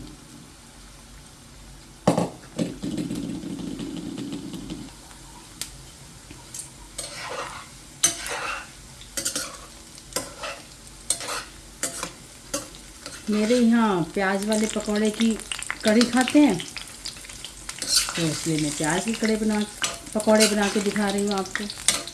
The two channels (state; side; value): identical; both; correlation 1.00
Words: मेरे यहाँ प्याज वाले पकौड़े की कढ़ी खाते हैं, तो इसलिए मैं प्याज की पकौड़े बना के दिखा रही हूँ आपको।